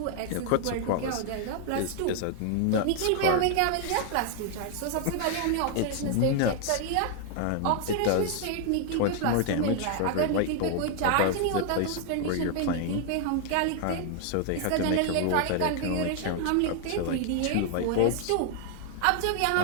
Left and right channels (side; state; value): both; different; correlation 0.00